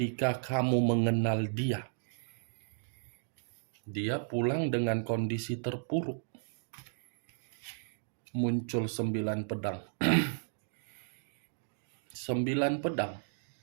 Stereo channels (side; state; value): left; silent; digital silence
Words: kamu mengenal dia. Dia pulang dengan kondisi terpuruk. Muncul 9 pedang. 9 pedang.